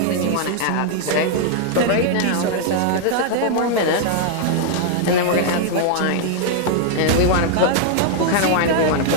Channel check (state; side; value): different; both; correlation -0.01